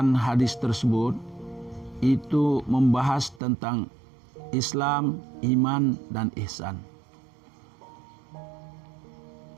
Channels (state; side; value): drops out; left; at 3.4 s